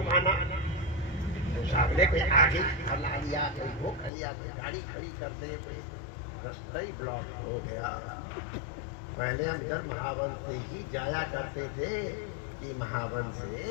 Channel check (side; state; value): right; drops out; at 4.1 s